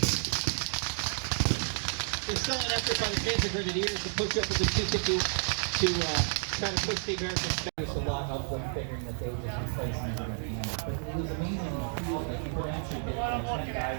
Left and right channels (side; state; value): left; silent; 57 dB below the other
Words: There's still an effort by the Panzer Grenadiers to push up with the 250 to try to push the Americans back. There's a lot of them figuring that they would just replace them. But it was amazing in the field that you could actually get 10